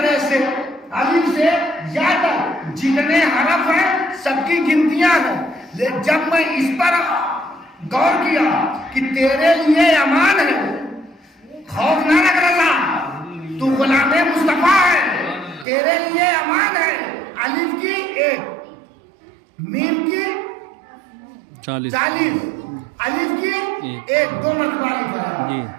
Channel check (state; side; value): drops out; left; at 15.7 s